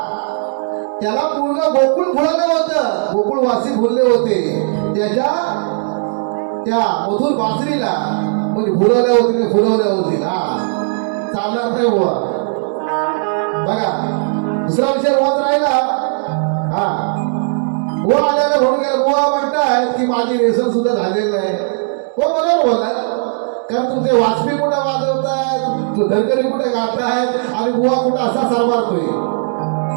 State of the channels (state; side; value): silent; left; digital silence